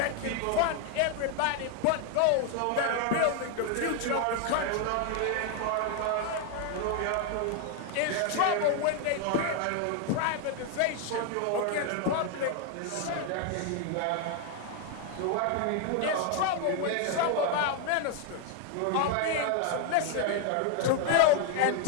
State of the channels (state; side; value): different; both; correlation 0.00